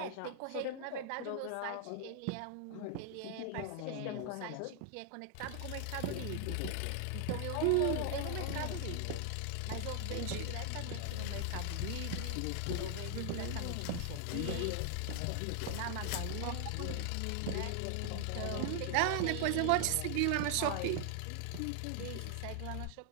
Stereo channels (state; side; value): different; both; correlation 0.00